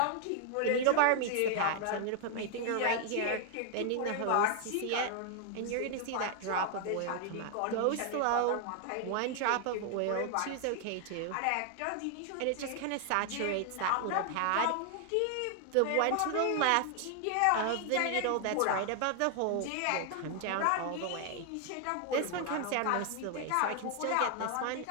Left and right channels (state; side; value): different; both; correlation 0.00